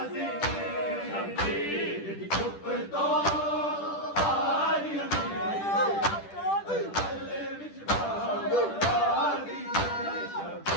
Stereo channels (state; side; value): late; right; 10 ms